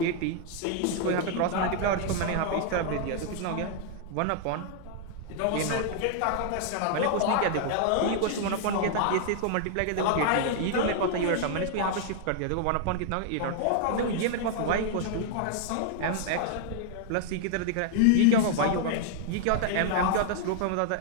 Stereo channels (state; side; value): different; both; correlation 0.00